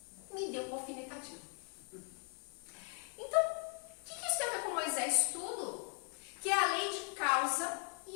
me deu uma alfinetadinha. Então, o que isso tem a ver com Moisés? Tudo. Que é a lei de causa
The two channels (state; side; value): quieter; right; 37.4 dB